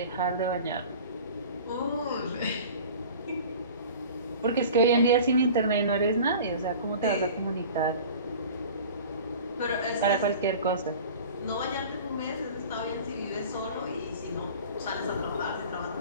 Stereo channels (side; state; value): both; inverted; correlation -0.40